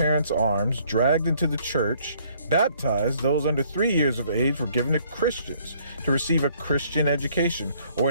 arms, dragged into the church, baptized. Those under 3 years of age were given to Christians to receive a Christian education, or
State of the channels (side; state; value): both; inverted; correlation -0.63